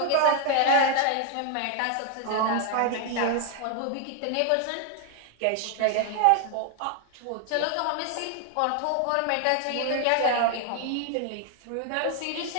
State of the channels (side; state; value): both; different; correlation 0.00